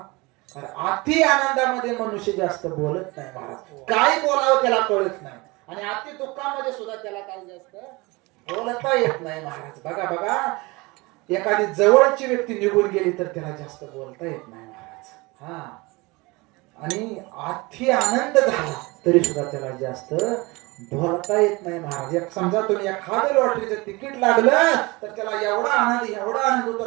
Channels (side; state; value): left; quieter; 24.2 dB